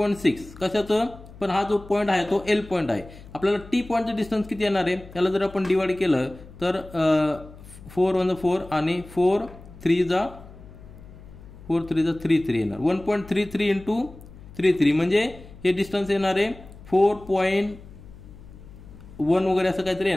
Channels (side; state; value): left; noise; hum, 19 dB below the sound